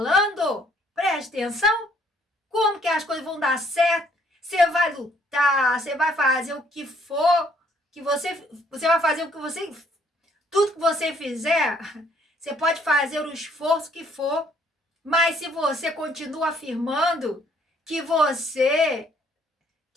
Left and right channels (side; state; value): both; normal; correlation 0.65